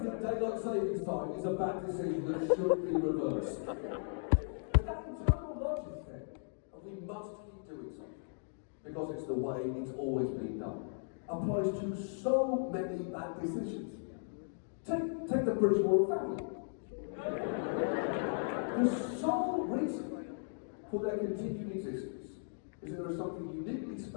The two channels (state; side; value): silent; right; digital silence